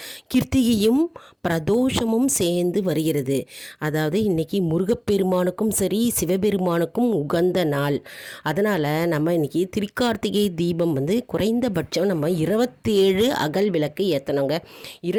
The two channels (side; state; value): both; identical; correlation 1.00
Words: கிருத்திகையும் பிரதோஷமும் சேர்ந்து வருகிறது. அதாவது இன்னைக்கு முருகப்பெருமானுக்கும் சரி சிவபெருமானுக்கும் உகந்த நாள். அதனால் நம்ம இன்னைக்கு திருக்கார்த்திகை தீபம் குறைந்தபட்சம் நம்ம 27 அகல் விளக்கு ஏற்றணுங்க.